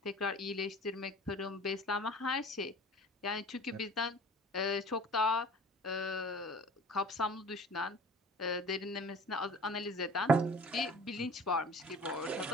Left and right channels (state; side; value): normal; both; correlation 0.44